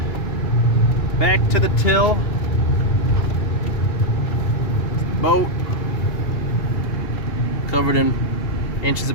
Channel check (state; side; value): late; right; 2.8 ms